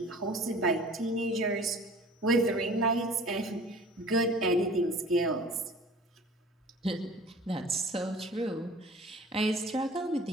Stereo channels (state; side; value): normal; both; correlation 0.45